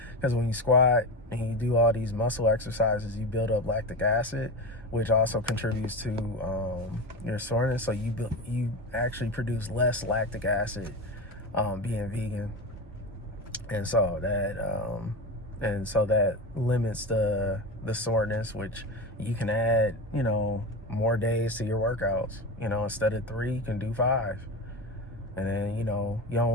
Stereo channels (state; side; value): normal; both; correlation 0.23